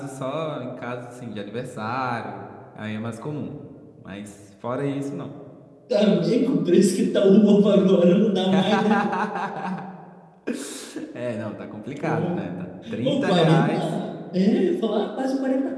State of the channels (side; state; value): both; identical; correlation 1.00